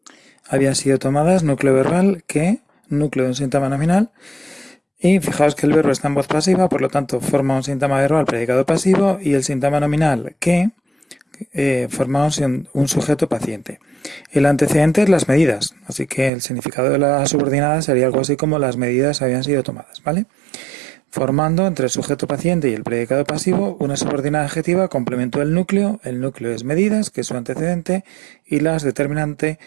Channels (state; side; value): drops out; left; at 16.3 s